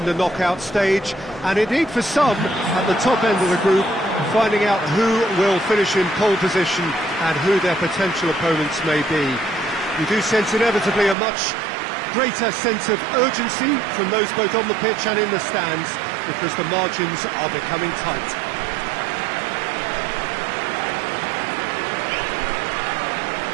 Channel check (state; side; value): drops out; left; at 11.2 s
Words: the knockout stage, and indeed for some, at the top end of the group, finding out who will finish in pole position and who their potential opponents may be. You do sense inevitably a much greater sense of urgency from those both on the pitch and in the stands, because the margins are becoming tight.